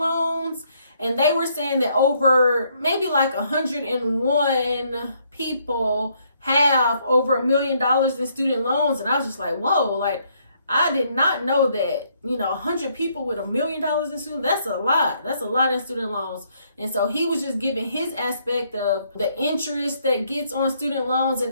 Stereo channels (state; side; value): inverted; both; correlation -0.70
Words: And they were saying that over maybe like 101 people have over $1 million in student loans. And I was just like, whoa, like, I did not know that, 100 people with $1 million in student, that's a lot. That's a lot in student loans. And so he was just giving his aspect of the interest that gets on student loans.